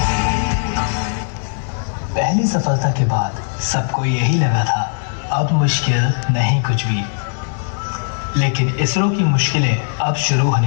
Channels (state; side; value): silent; right; digital silence